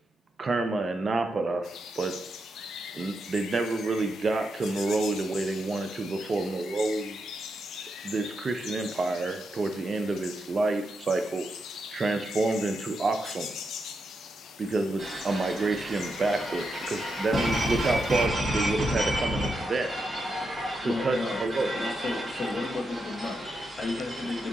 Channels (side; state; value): both; normal; correlation 0.85